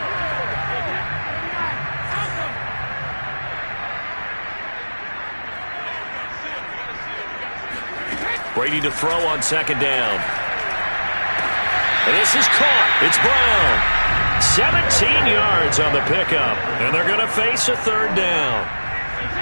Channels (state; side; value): inverted; both; correlation -1.00